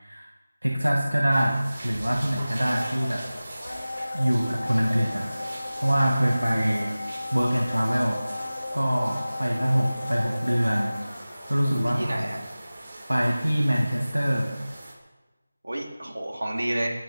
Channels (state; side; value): inverted; both; correlation -0.97